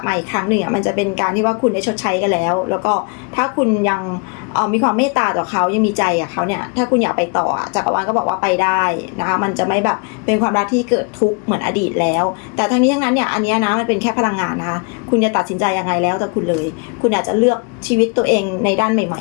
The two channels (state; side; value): quieter; right; 35.1 dB